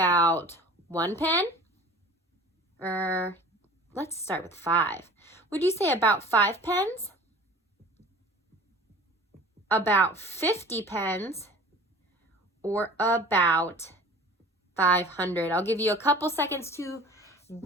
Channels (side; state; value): both; normal; correlation 0.44